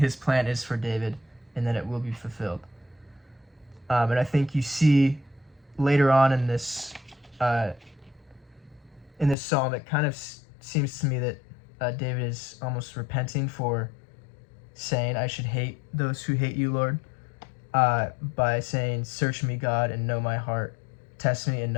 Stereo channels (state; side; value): drops out; right; at 9.3 s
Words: plan is for David, and that it will be fulfilled. And I think you see later on in this psalm, it kind of seems to me that David is almost repenting for saying, "I should hate those who hate you, Lord," by saying, "Search me, God, and know my heart. Test me and